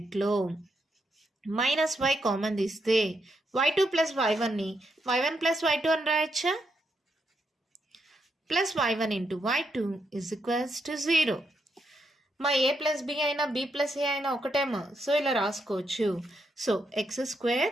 మైనస్ y కామన్ తీస్తే y2 plus y1ని y1 plus y2 అని రాయచ్చా, plus y1 into y2 is equals to 0. మా ఏ ప్లస్ బి అయినా బి ప్లస్ ఏ అయినా ఒకటేమో, సో ఇలా రాసుకోవచ్చు. So X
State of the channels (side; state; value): both; normal; correlation 0.80